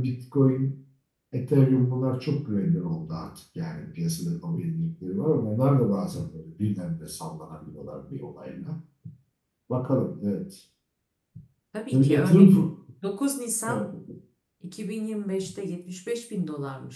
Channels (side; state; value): both; identical; correlation 1.00